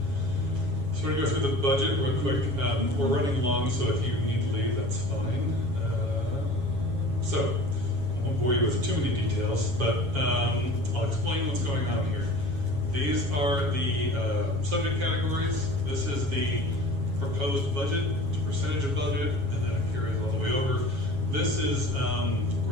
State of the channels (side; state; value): left; late; 7.3 ms